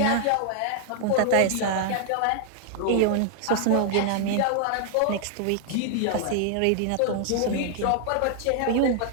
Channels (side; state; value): both; different; correlation -0.01